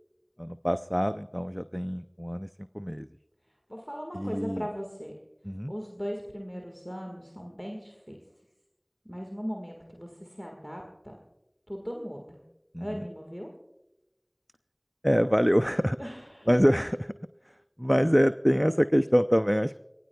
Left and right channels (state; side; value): identical; both; correlation 1.00